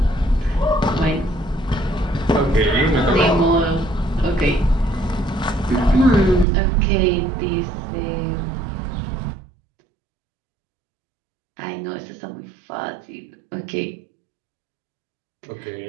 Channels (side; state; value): left; drops out; at 6.5 s